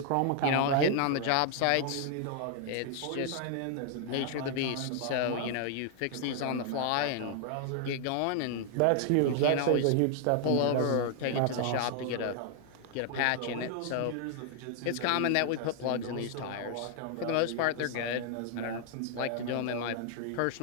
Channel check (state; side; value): different; both; correlation 0.00